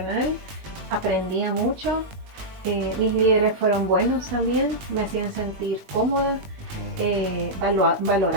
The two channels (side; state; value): left; late; 20 ms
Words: aprendía mucho. Mis líderes fueron buenos también, me hacían sentir cómoda,